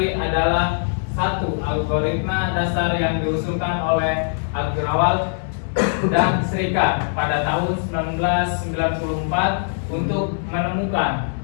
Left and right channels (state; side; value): silent; right; digital silence